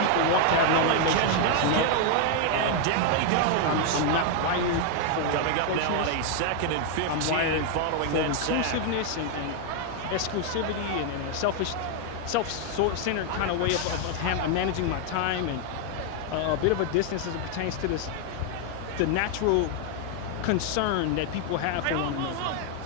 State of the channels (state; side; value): different; both; correlation 0.00